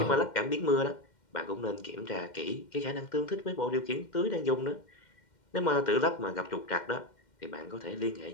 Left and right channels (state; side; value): late; right; 2.1 ms